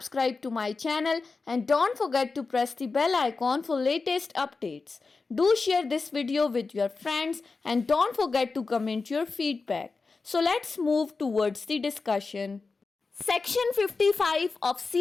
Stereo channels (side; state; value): right; quieter; 4.2 dB